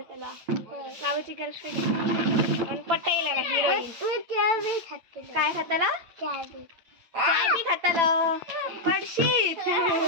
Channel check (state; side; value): late; left; 8.9 ms